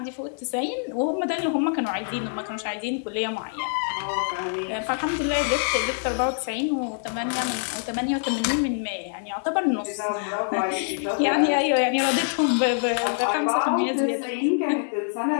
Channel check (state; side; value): silent; right; 56 dB below the other